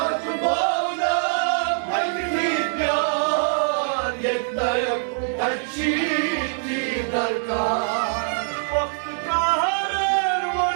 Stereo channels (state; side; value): silent; left; digital silence